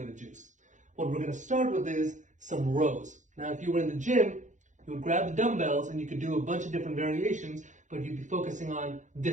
of juice. What we're going to start with is some rows. Now, if you were in the gym, you would grab the dumbbells and you could do a bunch of different variations, but you'd be focusing on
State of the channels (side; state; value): left; late; 0.36 ms